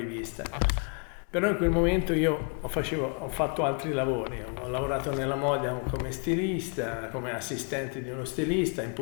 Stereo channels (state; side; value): quieter; right; 36.1 dB